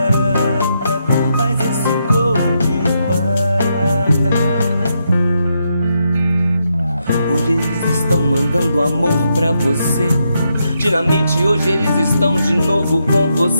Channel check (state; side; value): inverted; both; correlation -0.81